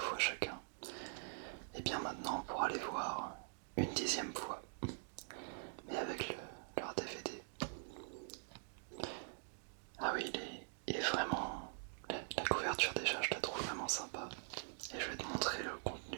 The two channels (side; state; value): left; silent; digital silence